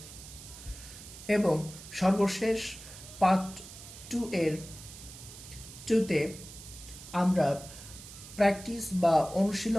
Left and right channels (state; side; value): noise; right; hiss, 15 dB below the sound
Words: এবং সর্বশেষ পার্ট টুতে আমরা প্র্যাকটিস বা